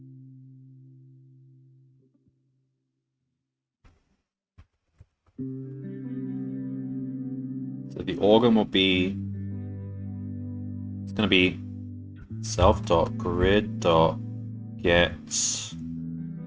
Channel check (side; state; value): both; identical; correlation 1.00